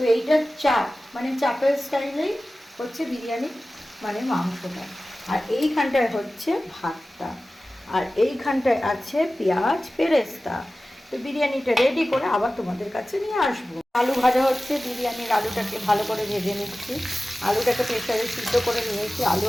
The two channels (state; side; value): normal; both; correlation 0.96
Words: এইটা চাপ, মানে চাপের স্টাইলেই হচ্ছে বিরিয়ানি, মানে মাংসটা। আর এইখানটায় হচ্ছে ভাতটা, আর এইখানটায় আছে পেঁয়াজ পেরেস্তা। তো বিরিয়ানিটা রেডি করে আবার তোমাদের কাছে নিয়ে আসবো। আলু ভাজা হচ্ছে, বিরিয়ানির আলুটাকে ভালো করে ভেজে নিচ্ছি। আলুটাকে প্রেসারে সিদ্ধ করে নিয়েছি, আলু